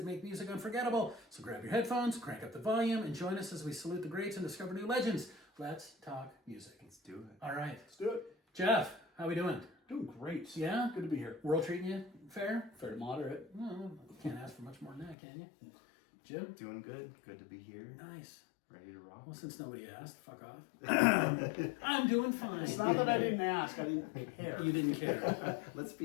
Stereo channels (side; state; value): right; drops out; at 15.2 s